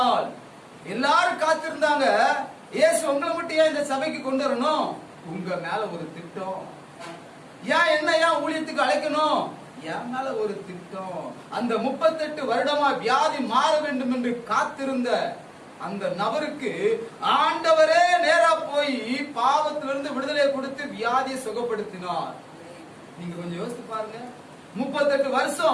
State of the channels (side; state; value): both; identical; correlation 1.00